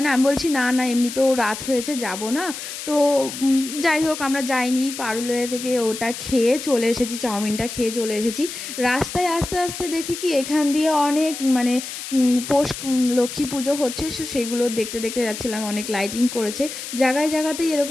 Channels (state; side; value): noise; left; hiss, 9 dB below the sound